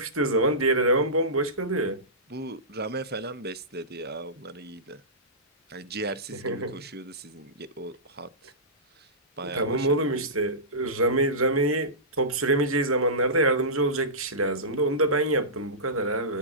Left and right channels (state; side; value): normal; both; correlation -0.20